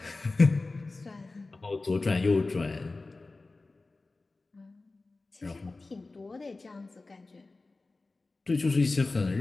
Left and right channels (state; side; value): quieter; right; 3.4 dB